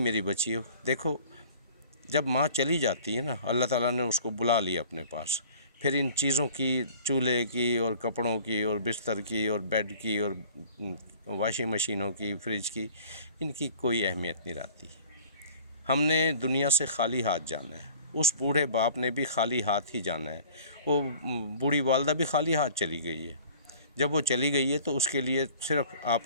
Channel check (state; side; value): inverted; both; correlation -0.49